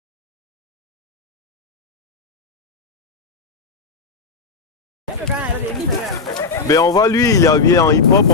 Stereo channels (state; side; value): quieter; right; 4.5 dB